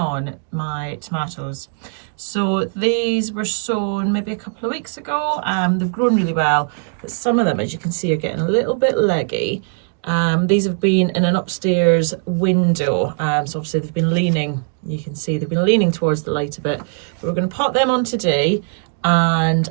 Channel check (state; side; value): silent; left; 59 dB below the other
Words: my tomatoes. So these were sown maybe a couple of weeks ago. They've grown really well, but some of them, as you can see, are getting a little bit leggy. These have been in an upstairs window, so obviously they've been leaning, you can see they've been leaning towards the light a bit. But we're going to pot them on today and